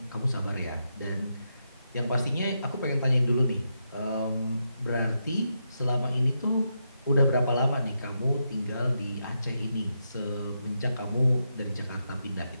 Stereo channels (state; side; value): inverted; both; correlation -0.83